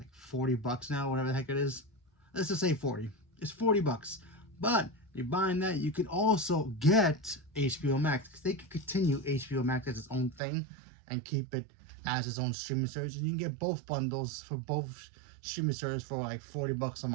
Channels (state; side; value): drops out; left; at 10.4 s